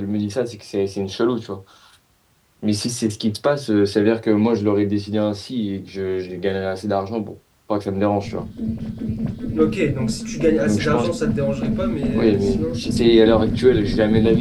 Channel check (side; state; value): both; identical; correlation 1.00